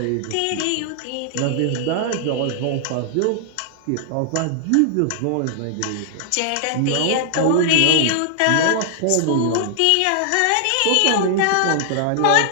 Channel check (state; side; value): different; both; correlation 0.00